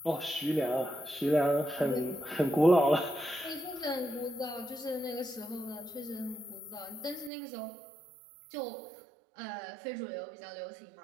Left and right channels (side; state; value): left; drops out; at 7.3 s